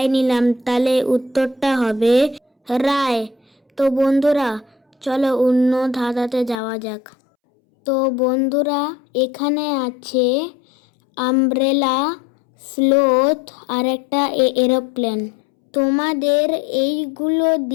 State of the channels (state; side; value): drops out; right; at 6.6 s